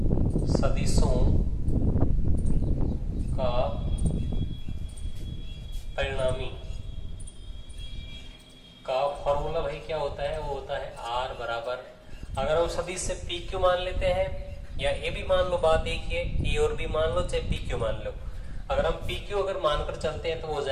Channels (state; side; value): identical; both; correlation 1.00